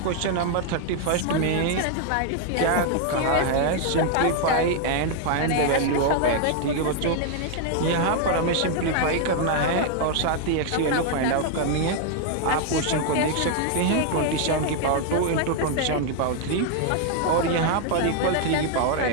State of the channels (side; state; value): both; different; correlation 0.00